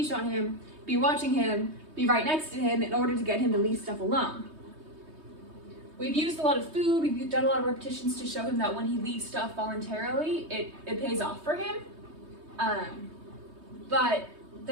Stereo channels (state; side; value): late; left; 3.2 ms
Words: on him, be watching him, be right next to him in order to get him to leave stuff alone. We've used a lot of food, we've done a lot of repetitions to show him that when he leaves stuff voluntarily, it pays off for him. But